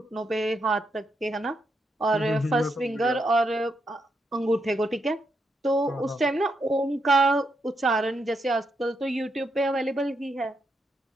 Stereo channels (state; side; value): normal; both; correlation 0.81